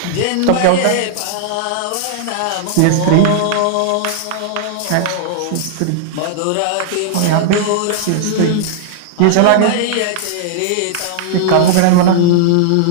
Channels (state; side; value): different; both; correlation -0.01